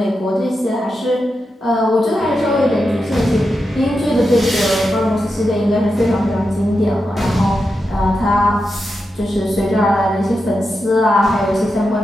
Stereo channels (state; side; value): normal; both; correlation 0.88